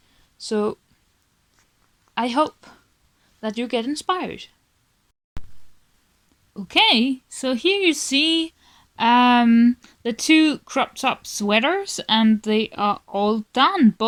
So I hope that you get inspired. Okay, so here you see the 2 crop top sweaters, and they are all done,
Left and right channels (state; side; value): identical; both; correlation 1.00